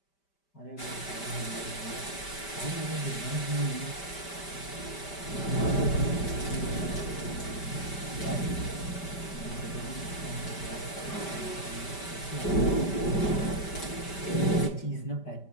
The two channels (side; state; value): right; late; 5.1 ms